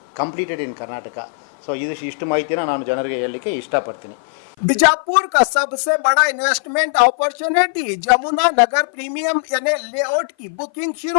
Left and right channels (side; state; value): right; silent; 55 dB below the other